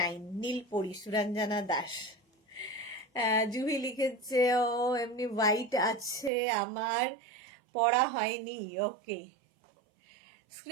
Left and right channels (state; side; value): drops out; left; at 6.3 s